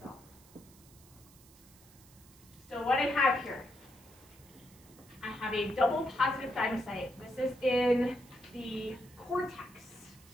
self. So what I have here, I have a double positive thymocyte. This is in the cortex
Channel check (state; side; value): noise; right; hiss, 24 dB below the sound